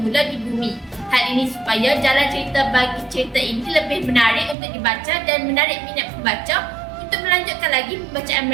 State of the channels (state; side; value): drops out; left; at 4.5 s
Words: di bumi. Hal ini supaya jalan cerita bagi cerita ini lebih menarik untuk dibaca dan menarik minat pembaca untuk melanjutkan lagi pembacaan